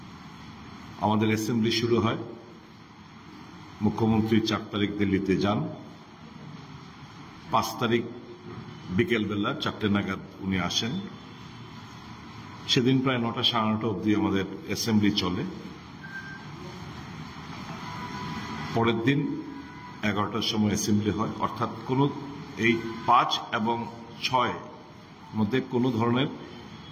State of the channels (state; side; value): identical; both; correlation 1.00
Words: আমাদের অ্যাসেম্বলি শুরু হয়। মুখ্যমন্ত্রী 4 তারিখ দিল্লিতে যান। 5 তারিখ বিকেলবেলা 4টে নাগাদ উনি আসেন। সেদিন প্রায় 9টা সাড়ে 9টা অবধি আমাদের অ্যাসেম্বলি চলে। পরের দিন 11টার সময় অ্যাসেম্বলি হয়, অর্থাৎ কোন এই 5 এবং 6 মধ্যে কোনো ধরনের